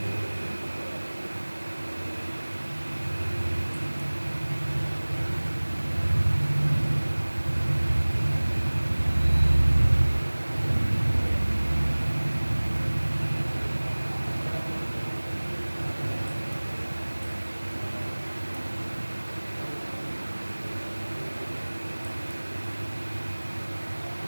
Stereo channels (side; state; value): both; inverted; correlation -1.00